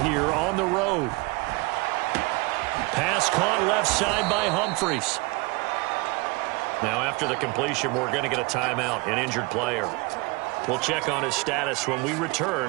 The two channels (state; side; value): quieter; left; 25.3 dB